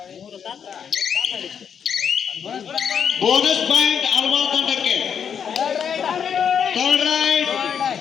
ಬೋನಸ್ ಪಾಯಿಂಟ್ ಆಲ್ಮಾಳ್ ತಂಡಕ್ಕೆ, ಥರ್ಡ್ ರೈಡ್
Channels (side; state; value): right; quieter; 7.6 dB